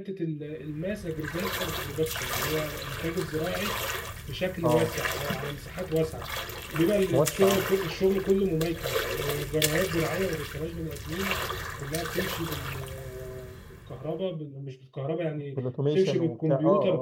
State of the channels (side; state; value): both; identical; correlation 1.00